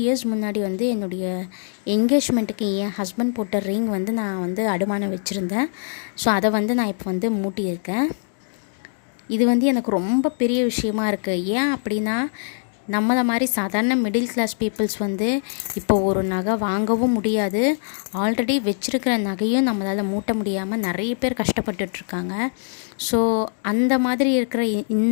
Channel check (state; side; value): silent; right; digital silence